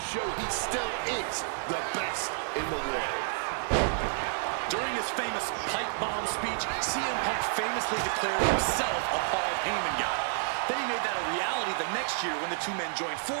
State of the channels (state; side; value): silent; left; 58 dB below the other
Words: show he still is the best in the world. During his famous pipe bomb speech, CM Punk famously declared himself a Paul Heyman guy. Then he made that a reality the next year when the two men joined